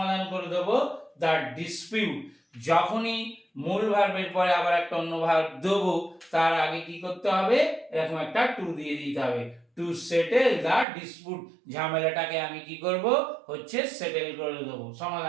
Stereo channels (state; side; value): drops out; left; at 10.9 s